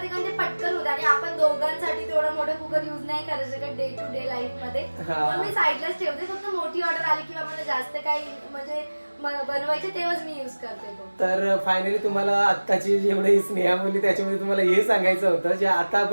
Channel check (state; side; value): inverted; both; correlation -1.00